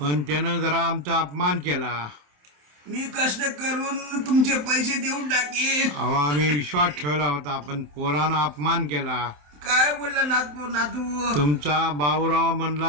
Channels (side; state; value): left; late; 27 ms